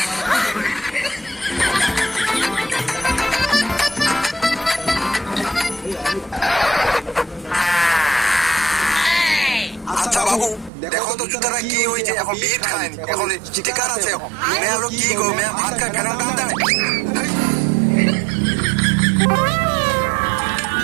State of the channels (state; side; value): drops out; left; at 10.7 s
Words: আচ্ছা বাবু, দেখো তো জুতারা কি হয়েছে, এখন বিট খায়নি, এখন স্টিকার আছে। মেয়ে হলো কি গো, মেয়ে ভাত খায় ফেরার দাম দেয়।